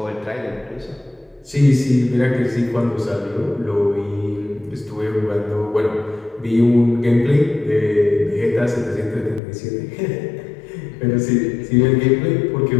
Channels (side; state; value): right; drops out; at 9.4 s